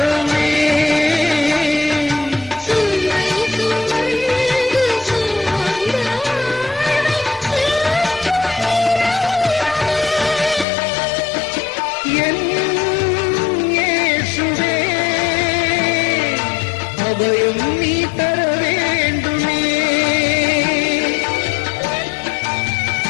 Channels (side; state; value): right; drops out; at 10.7 s